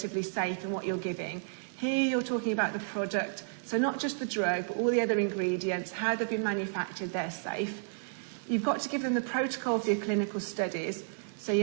safe in what you're giving. Here you're talking about the product, so not just the drug, but all the other ingredients, how they've been manufactured, they're safe. You've got to give them the protocol for your clinical studies, so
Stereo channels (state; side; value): silent; left; digital silence